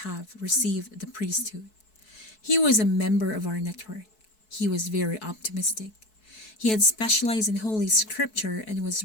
have received the priesthood. He was a member of our network. He was very optimistic. He had specialized in Holy Scripture and was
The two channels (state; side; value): late; right; 4.6 ms